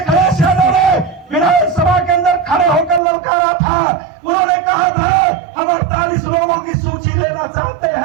यादव ने विधानसभा के अंदर खड़े होकर ललकारा था। उन्होंने कहा था हम 48 लोगों की सूची लेना चाहते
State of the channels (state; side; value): drops out; left; at 3.0 s